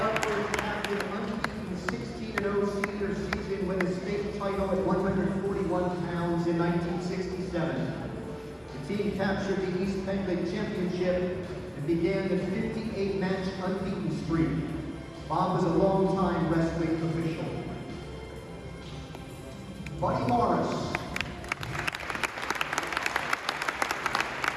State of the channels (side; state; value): both; identical; correlation 1.00